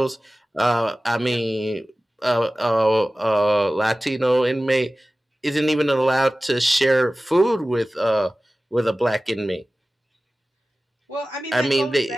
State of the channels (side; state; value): both; normal; correlation 0.97